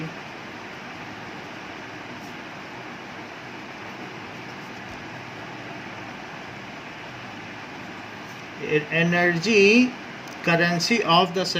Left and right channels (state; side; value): identical; both; correlation 1.00